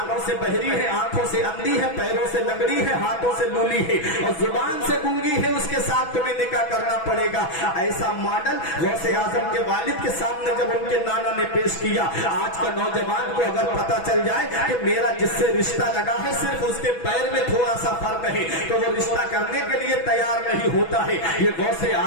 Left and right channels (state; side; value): late; right; 6.1 ms